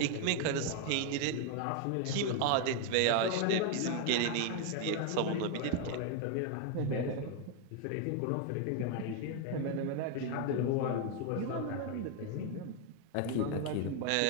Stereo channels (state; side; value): different; both; correlation 0.01